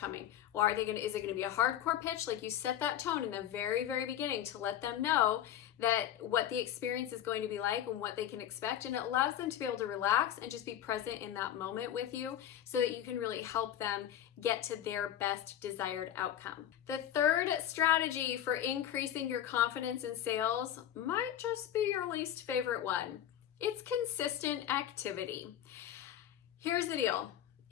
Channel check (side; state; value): right; quieter; 10.9 dB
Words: Or is it going to be a hardcore pitch? Like, you set that tone in the very, very beginning to let them know that what the experience is going to be like and what they can expect, and it allows them to be able to relax and just be present in that moment with you so that you can really help them get to their best desired outcome. The third strategy for increasing your confidence in sales might just be your least favorite one. It's consistent activity. Here's the deal.